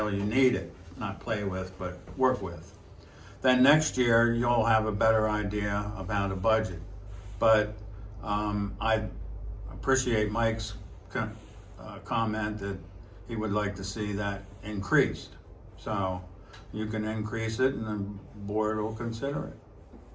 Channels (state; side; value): identical; both; correlation 1.00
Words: you need it. Not play with, but work with. Then next year, you'll have a better idea about a budget. But I appreciate Mike's comment that he would like to see that increased. So you can increase it and the board will consider it.